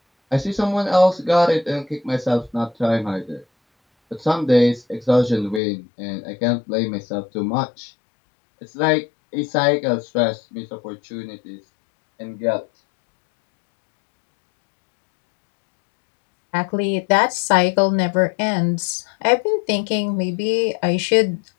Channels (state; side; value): drops out; right; at 5.6 s